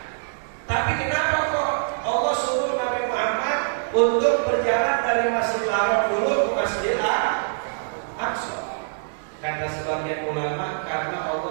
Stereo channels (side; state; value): left; silent; digital silence